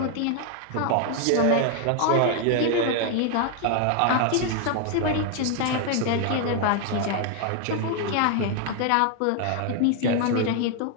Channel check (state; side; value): different; both; correlation 0.00